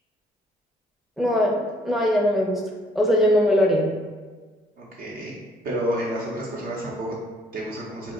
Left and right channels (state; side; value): normal; both; correlation 0.64